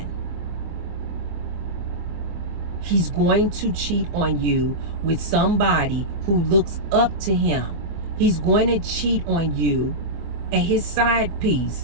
He's going to cheat on you with somebody who looks up to him. He's going to cheat on you and his side piece.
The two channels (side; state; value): left; late; 24 ms